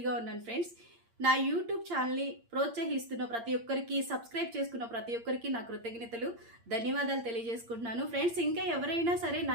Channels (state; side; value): late; left; 8.7 ms